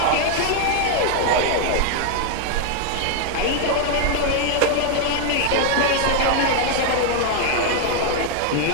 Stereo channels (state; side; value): different; both; correlation 0.00